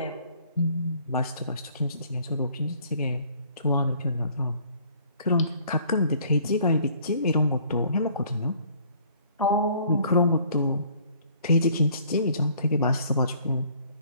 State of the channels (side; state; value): both; inverted; correlation -0.58